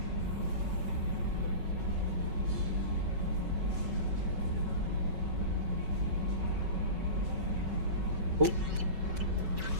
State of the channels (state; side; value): late; left; 5.3 ms